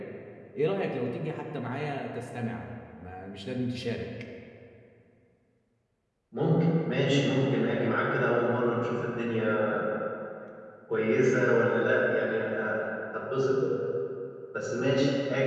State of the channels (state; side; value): identical; both; correlation 1.00